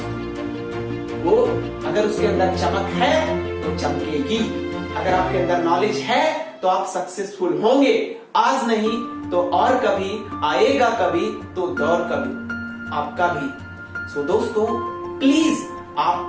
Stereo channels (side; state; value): both; identical; correlation 1.00